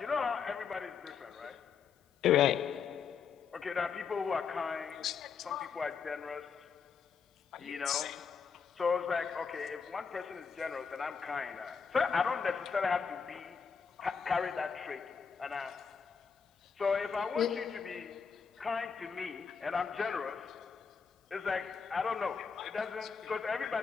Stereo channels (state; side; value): quieter; right; 6.2 dB